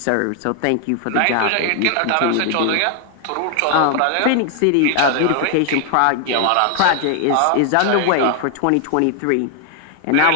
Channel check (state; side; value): different; both; correlation 0.00